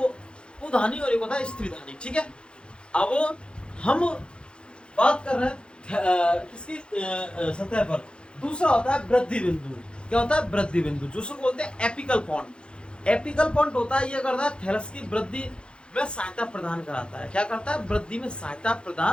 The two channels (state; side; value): late; right; 0.054 ms